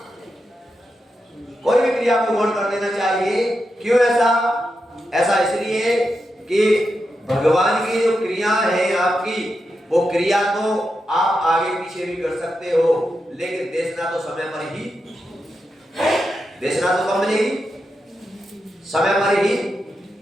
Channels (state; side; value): normal; both; correlation 0.87